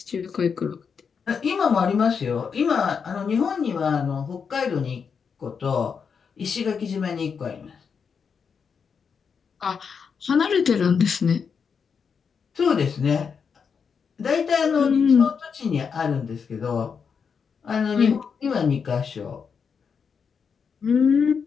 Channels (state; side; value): quieter; right; 6.2 dB